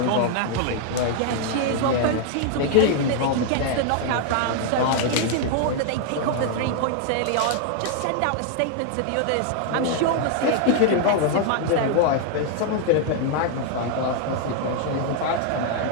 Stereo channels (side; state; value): both; different; correlation 0.00